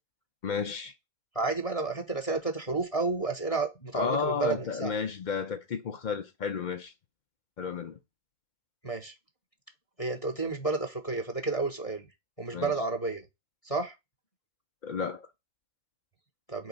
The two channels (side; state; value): right; late; 1.6 ms